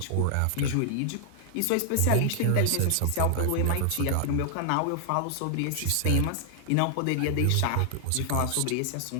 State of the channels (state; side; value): different; both; correlation 0.00